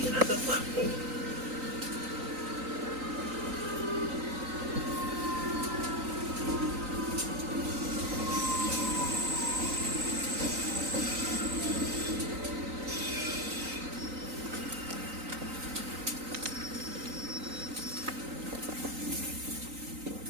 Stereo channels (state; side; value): late; left; 3.9 ms